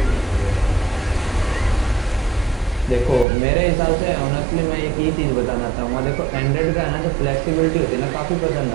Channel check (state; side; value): drops out; left; at 3.2 s